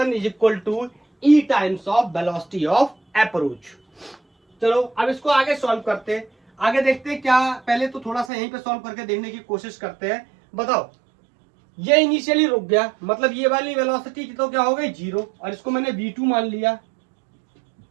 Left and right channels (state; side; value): drops out; left; at 8.3 s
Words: is equal to E times of velocity of approach. चलो अब इसको आगे सॉल्व करते हैं, आगे देखते हैं क्या। पहले तो थोड़ा सा यहीं पे सॉल्व करके देखने की कोशिश करते हैं। बताओ ये इनिशियली रुक गया, मतलब ये वाली वेलोसिटी की तो क्या हो गई, 0, और इसको मैंने v2 मान लिया,